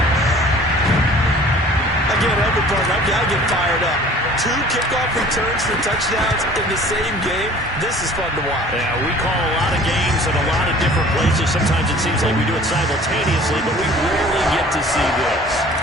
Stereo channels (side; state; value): both; normal; correlation 0.49